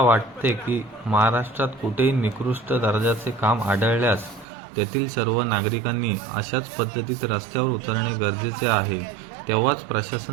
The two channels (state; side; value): drops out; left; at 4.5 s